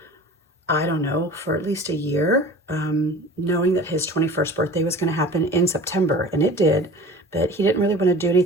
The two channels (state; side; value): normal; both; correlation 0.40